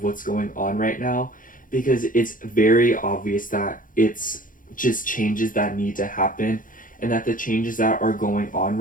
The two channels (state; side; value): late; right; 0.39 ms